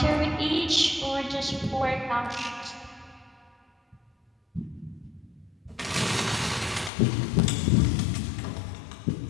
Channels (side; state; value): right; drops out; at 6.9 s